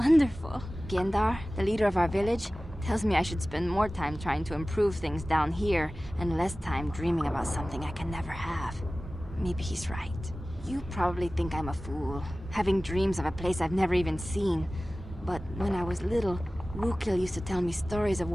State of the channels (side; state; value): both; normal; correlation 0.97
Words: Gendar, the leader of our village, tells me I should spend more time trying to improve things down here and less time dreaming about something I can never have. Maybe he's right. You probably think I'm a fool, having dreams of a place I've never even seen. But when I was little, Rukil used to tell me stories of